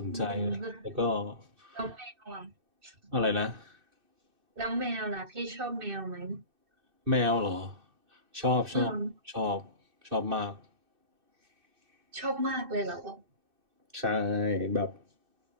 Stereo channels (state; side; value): late; left; 2.6 ms